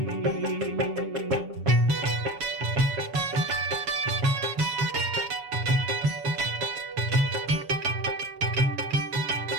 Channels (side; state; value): left; late; 7.1 ms